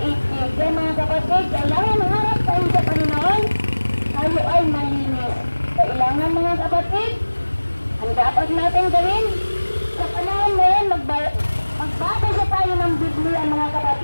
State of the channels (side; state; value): both; inverted; correlation -1.00